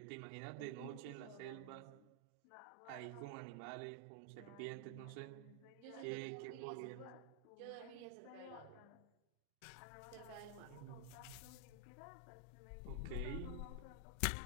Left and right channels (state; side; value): different; both; correlation 0.00